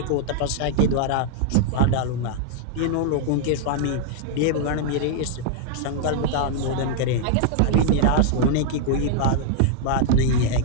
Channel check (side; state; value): both; different; correlation 0.00